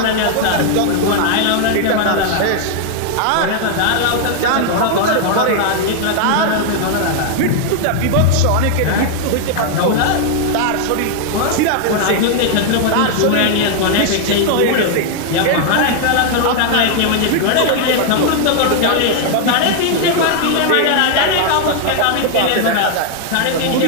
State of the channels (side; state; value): both; different; correlation 0.00